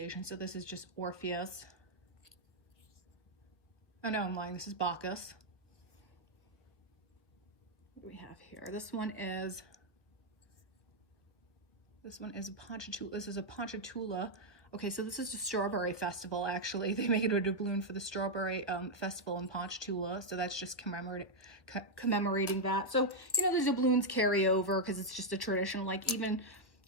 So this is just Orpheus. Oh no, I'm lying. This is Bacchus. We have here, this one is a Ponchatoula. This is a Ponchatoula. Okay, so this is a strawberry festival, actually. They make it a doubloon for the strawberry festival in Ponchatoula. So that's just commemorating that. So, you know, the doubloons carry over because it's just a tradition. Like even,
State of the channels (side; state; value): right; late; 1.2 ms